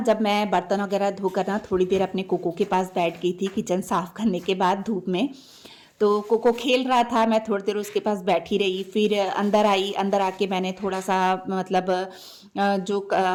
जब मैं बर्तन वगैरह धोकर ना थोड़ी देर अपने कोको के पास बैठ गई थी किचन साफ़ करने के बाद धूप में, तो कोको खेल रहा था, मैं थोड़ी देर उसके पास बैठी रही, फिर अंदर आई। अंदर आके मैंने थोड़ा सा मतलब जो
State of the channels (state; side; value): identical; both; correlation 1.00